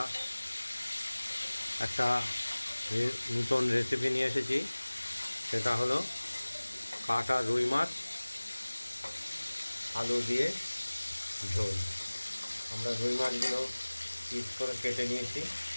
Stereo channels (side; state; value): both; inverted; correlation -1.00